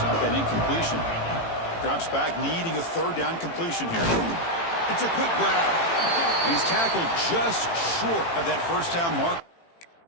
up that incompletion. Drops back, needing a third down completion here. It's a quick grab. And he's tackled just short of that first down mark.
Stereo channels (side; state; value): right; late; 18 ms